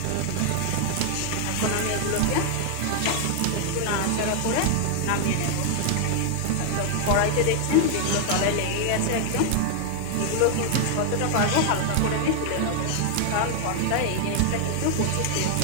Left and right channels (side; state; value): both; different; correlation 0.00